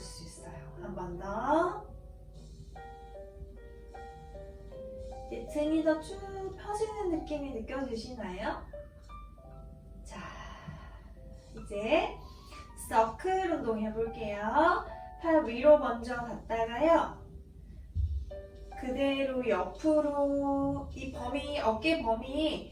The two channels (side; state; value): both; identical; correlation 1.00